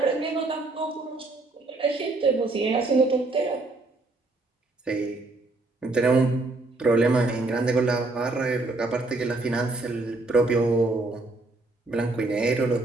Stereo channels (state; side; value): quieter; left; 3.1 dB